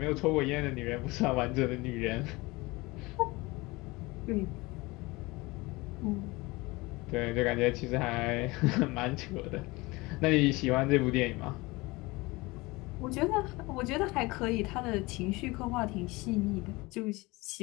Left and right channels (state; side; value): quieter; right; 22.9 dB